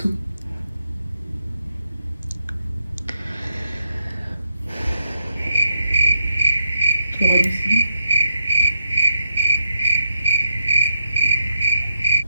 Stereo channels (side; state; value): both; inverted; correlation -0.78